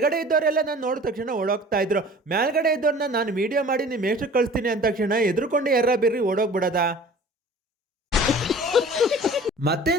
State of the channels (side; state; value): both; normal; correlation 0.45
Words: ಇದ್ದವರೆಲ್ಲ ನಾನು ನೋಡಿದ ತಕ್ಷಣ ಓಡೋಗ್ತಾ ಇದ್ರು. ಮೇಲ್ಗಡೆ ಇದ್ದವ್ರನ್ನ ನಾನು ವಿಡಿಯೋ ಮಾಡಿ ನಿಮ್ಮ ಎಷ್ಟು ಕಳಿಸ್ತೀನಿ ಅಂದ ತಕ್ಷಣ ಎದುರುಕೊಂಡು ಎರ್ರ ಬಿರ್ರಿ ಓಡೋಗ್ಬಿಡದ. ಮತ್ತೆ